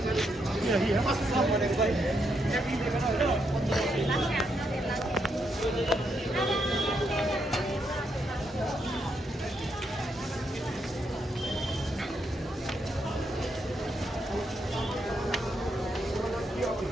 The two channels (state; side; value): normal; both; correlation 0.79